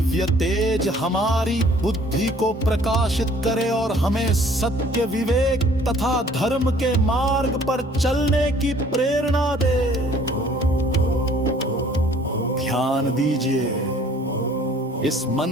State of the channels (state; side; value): normal; both; correlation 0.56